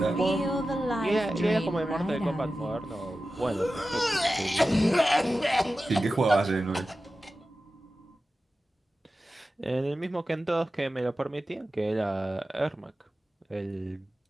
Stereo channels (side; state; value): both; normal; correlation 0.94